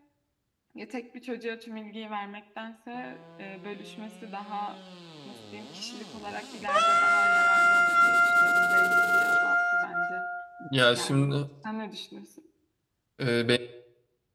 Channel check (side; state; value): both; identical; correlation 1.00